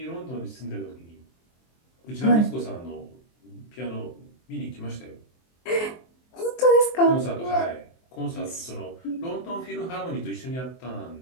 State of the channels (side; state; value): right; late; 23 ms